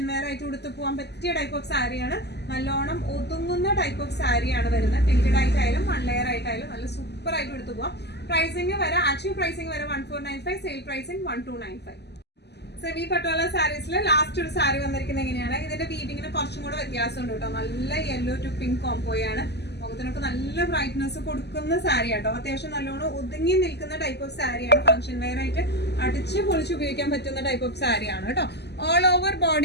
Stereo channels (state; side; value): late; right; 0.49 ms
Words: വെയർ ആയിട്ട് കൊടുത്തു പോകാൻ പറ്റിയ ടൈപ്പ് ഓഫ് സാരിയാണ്. നല്ലോണം ഒതുങ്ങുന്ന ടൈപ്പ് ഓഫ് സാരിയാണ് വരുന്നത്. പ്രിന്റഡ് ആയിട്ടായാലും 1 ലെയർ ആയിട്ടായാലും നല്ല സൂപ്പർ ആയിട്ട് കൊടുത്തു പോകാം. പ്രൈസിങ് വരെ ആക്ച്വൽ പ്രൈസിങ് വരെ 1495, sale pricing 1295. Semi Patola സാരീസിൽ last ഒരു സാരി വന്നിരിക്കുന്നത് എങ്ങനെയാണ്? ഇതിന്റെ വീവിങ്ങിന് കുറച്ചും കൂടെ വ്യത്യാസമുണ്ട് കേട്ടോ. നല്ല യെല്ലോ ടു പിങ്ക് കോംബോയാണ്. മുഖത്തിനൊക്കെ നല്ല ബ്രൈറ്റ്നസ് കൊടുക്കുന്ന സാരി ആട്ടോ. അത്യാവശ്യം നല്ലോണം ഒതുങ്ങി നിൽക്കുന്ന ടൈപ്പ് ഓഫ് സാരിയാണ്. ഫംഗ്ഷൻ വെയർ ആയിട്ട് അടിച്ച് പൊളിച്ച് ഉപയോഗിക്കാൻ പറ്റുന്ന ടൈപ്പ് ഓഫ് സാരിയാണ് കേട്ടോ. ഓൾ ഓവർ